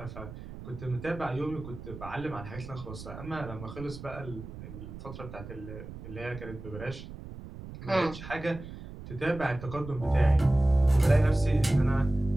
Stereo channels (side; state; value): right; noise; rumble, 12 dB below the sound